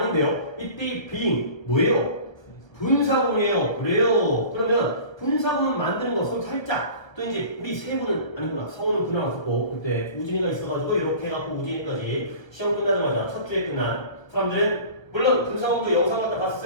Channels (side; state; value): right; late; 1.1 ms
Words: 이때 being 뭐예요? 분사구문이에요. 그래요. 그러면 분사구문 만드는 거 손 살짝 또 이제 우리 세 분은 아니구나 성우는 그날 없었고 그때 우진이가 있어가지고 이렇게 해갖고 우진이까지 시험 끝나자마자 첫 주에 끝난 사람들은 물론 분사구문도 영상 갖다